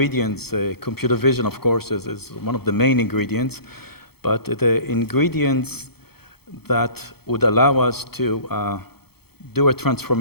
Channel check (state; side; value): late; right; 0.96 ms